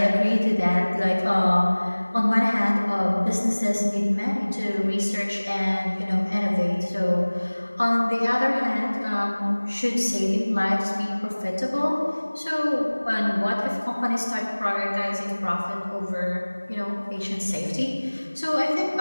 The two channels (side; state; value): both; inverted; correlation -1.00